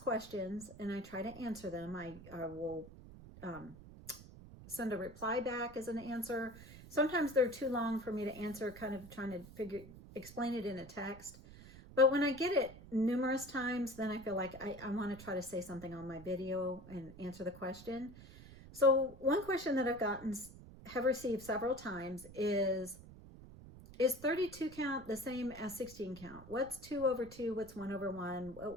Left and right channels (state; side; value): noise; right; rumble, 17 dB below the sound